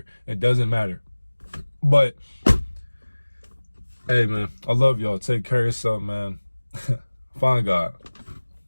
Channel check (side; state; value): both; inverted; correlation -1.00